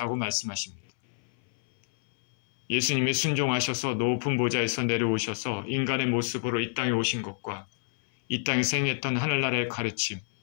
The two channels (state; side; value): silent; right; 59 dB below the other